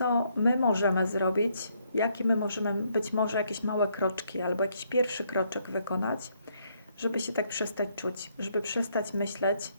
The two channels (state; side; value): inverted; both; correlation -0.72